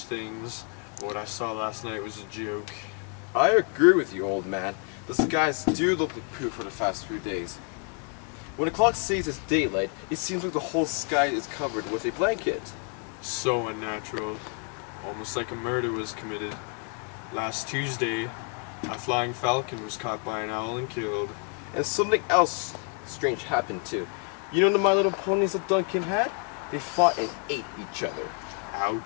things. What I saw last night was a joke. I agree with you, old man. The skies do look like poo for the past few days. When the clock says it's daylight, it seems like the whole sky is covered with a blanket. So unnatural. Almost like a murder was committed. Last Tuesday, a flying falcon was caught by an owl and killed. And something else strange happened too. You know the My Little Ponies that Duncan had? They fought and ate each other.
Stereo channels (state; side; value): quieter; right; 39.2 dB